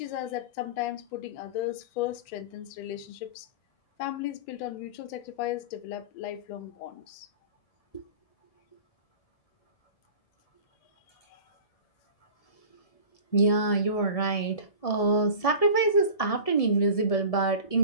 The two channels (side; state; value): right; late; 1.7 ms